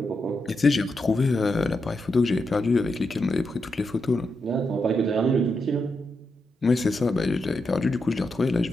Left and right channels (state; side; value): normal; both; correlation 0.85